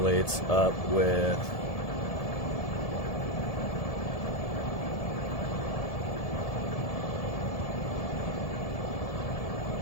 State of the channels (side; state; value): right; late; 1.7 ms